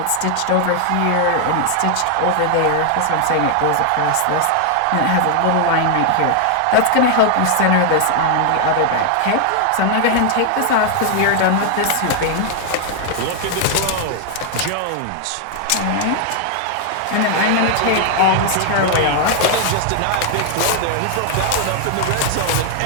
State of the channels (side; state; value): both; different; correlation 0.00